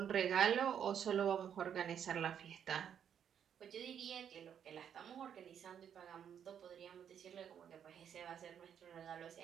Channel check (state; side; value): quieter; left; 8.6 dB